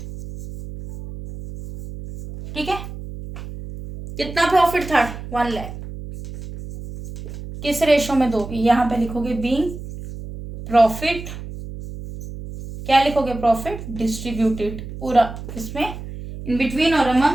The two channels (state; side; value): noise; right; hum, 11 dB below the sound